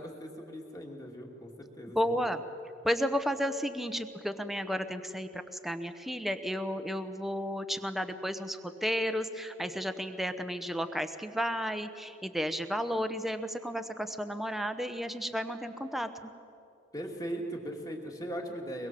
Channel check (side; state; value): both; normal; correlation 0.83